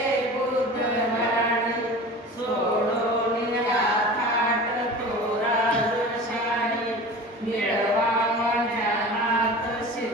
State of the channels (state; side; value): normal; both; correlation 0.36